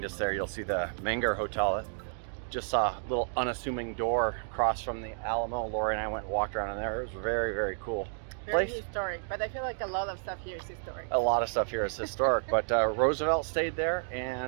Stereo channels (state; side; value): silent; left; digital silence